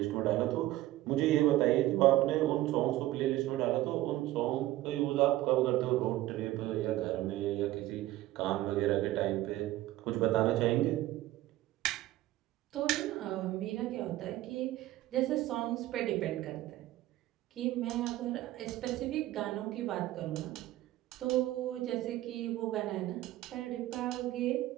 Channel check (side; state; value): left; quieter; 15.9 dB